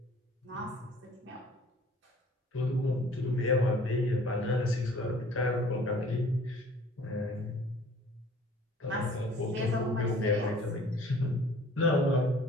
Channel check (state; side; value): normal; both; correlation 0.52